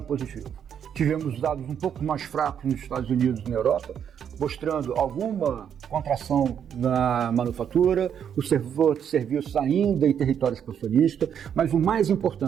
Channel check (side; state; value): left; quieter; 8.5 dB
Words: positivo. Tivemos dados um pouco mais fracos nos Estados Unidos e na Europa, mostrando alguma contração na manufatura, o setor de serviços ainda em território expansionista, mas o mais